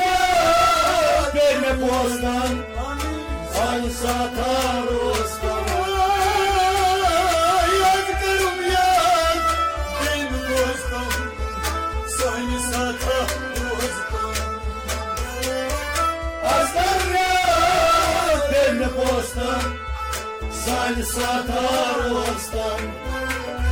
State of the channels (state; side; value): identical; both; correlation 1.00